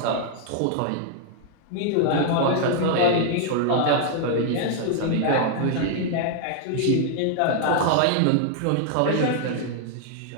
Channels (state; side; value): different; both; correlation 0.00